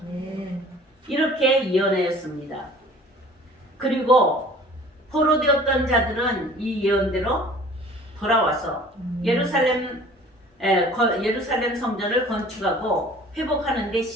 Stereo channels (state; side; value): normal; both; correlation 0.48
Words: 아멘. 이렇게 예언하였습니다. 그리고 포로되었던 자들은 이 예언대로 돌아와서 예루살렘 성전을 건축하고 회복하는 데